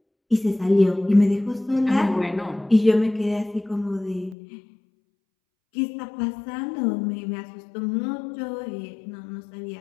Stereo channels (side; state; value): right; drops out; at 4.4 s